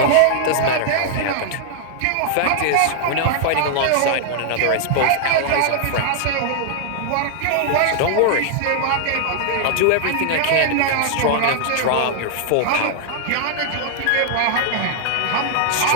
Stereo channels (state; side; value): different; both; correlation -0.01